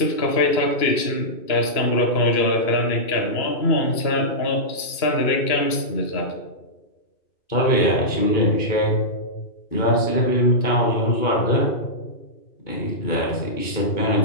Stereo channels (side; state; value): right; late; 2.9 ms